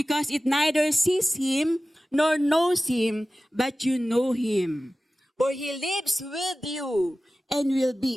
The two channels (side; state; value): both; normal; correlation 0.96